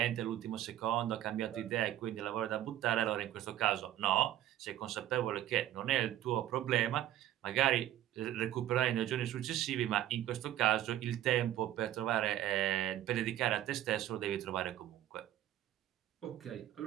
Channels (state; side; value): quieter; left; 12.8 dB